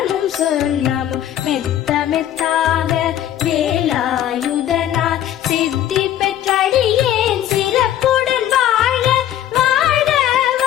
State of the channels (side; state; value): right; quieter; 11.5 dB